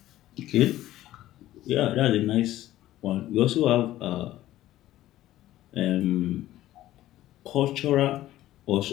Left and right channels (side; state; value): right; quieter; 14.5 dB